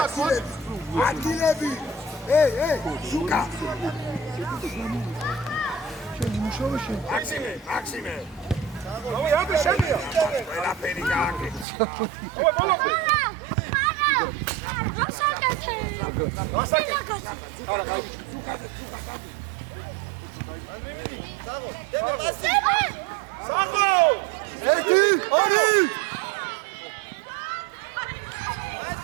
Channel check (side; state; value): left; drops out; at 11.7 s